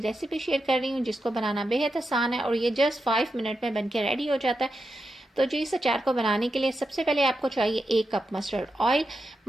शेयर कर रही हूँ, जिसको बनाना बेहद आसान है और ये जस्ट 5 मिनट में बनके रेडी हो जाता है। तो जी, इस अचार को बनाने के लिए सबसे पहले आपको चाहिए 1 cup mustard oil.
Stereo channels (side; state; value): both; normal; correlation 0.88